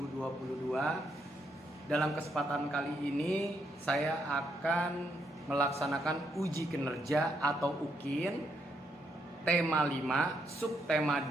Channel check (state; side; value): normal; both; correlation 0.77